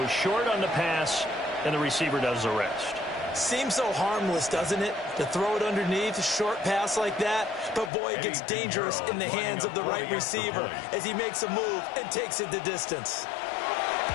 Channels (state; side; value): drops out; right; at 7.9 s